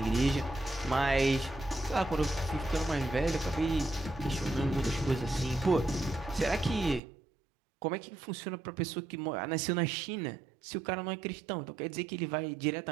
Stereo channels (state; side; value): drops out; left; at 7.0 s